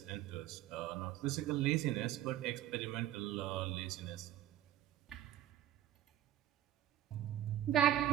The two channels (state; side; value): quieter; left; 12.6 dB